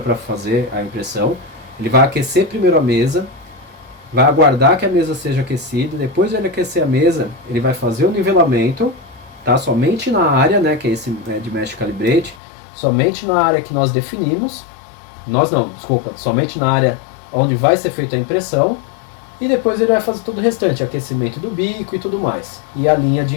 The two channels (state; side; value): drops out; right; at 12.4 s